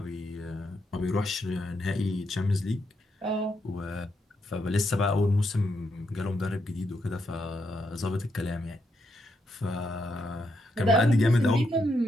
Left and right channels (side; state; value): both; normal; correlation 0.80